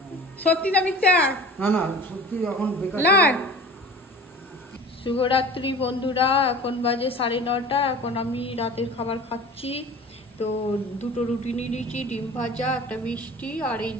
সত্যি না মিথ্যা? না না সত্যি এখন বেকার। শুভরাত্রি বন্ধুরা, এখন বাজে 9:30। এখন আমি রাতের খাবার খাচ্ছি। তো 2টো রুটি নিয়ে নিয়েছি, ডিম ভাজা, একটা মিষ্টি, আর এই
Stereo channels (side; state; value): both; normal; correlation 0.39